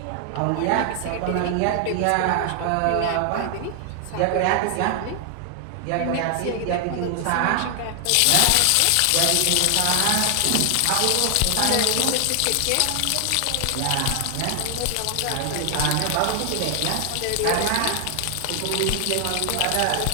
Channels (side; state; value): both; different; correlation 0.00